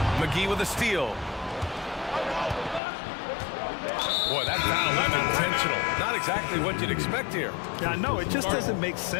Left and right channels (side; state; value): right; drops out; at 2.8 s